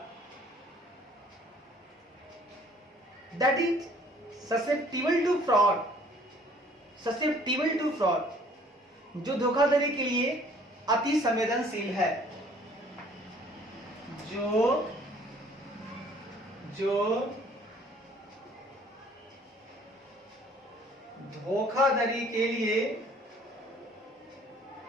that is susceptible to fraud, जो धोखाधड़ी के लिए अति संवेदनशील है, जो धोखाधड़ी के लिए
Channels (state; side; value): normal; both; correlation 0.56